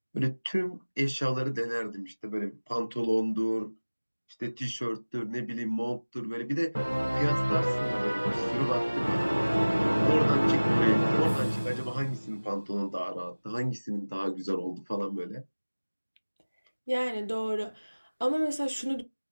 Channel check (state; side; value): inverted; both; correlation -1.00